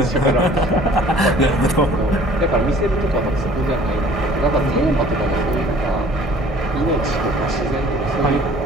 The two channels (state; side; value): normal; both; correlation 0.52